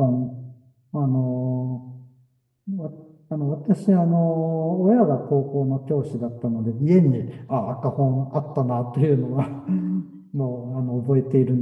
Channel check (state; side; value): identical; both; correlation 1.00